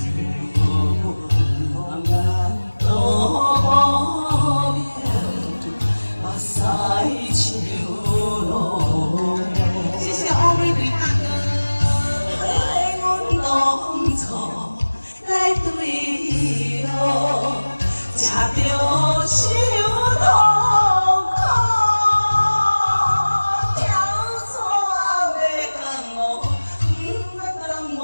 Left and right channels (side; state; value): both; inverted; correlation -1.00